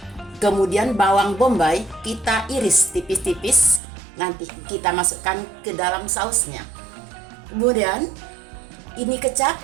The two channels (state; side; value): drops out; left; at 3.8 s